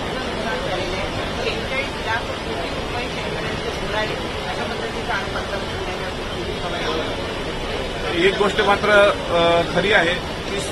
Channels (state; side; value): identical; both; correlation 1.00